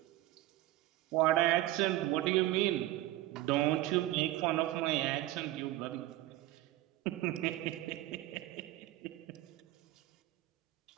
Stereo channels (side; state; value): left; quieter; 16.0 dB